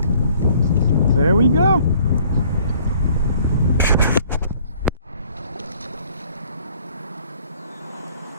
There we go.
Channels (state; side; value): inverted; both; correlation -0.58